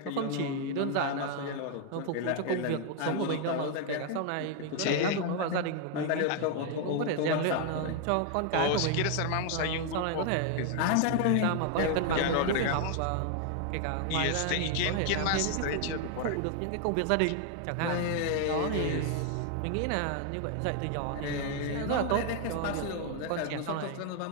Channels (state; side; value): different; both; correlation 0.00